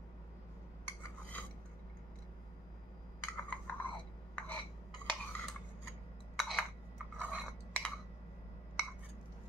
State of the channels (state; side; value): normal; both; correlation 0.61